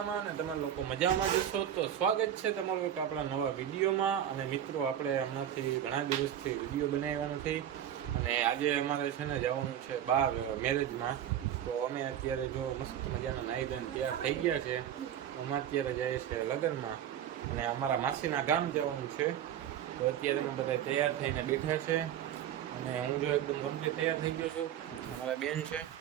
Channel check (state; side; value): quieter; left; 10.3 dB